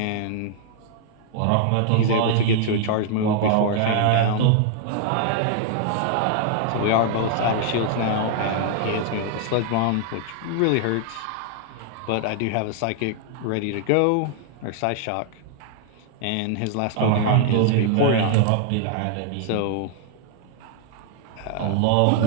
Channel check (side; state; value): both; different; correlation 0.00